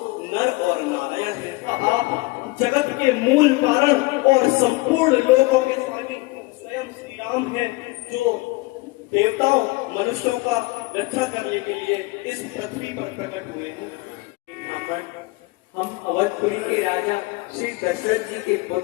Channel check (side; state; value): right; quieter; 23.1 dB